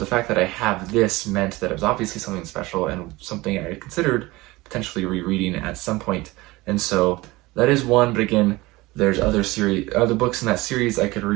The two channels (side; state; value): left; quieter; 20.7 dB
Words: fact that I have this meant that it was obviously something special and something I had considered potentially rereading at some point, and so that is one. But again, there's other books in that series I could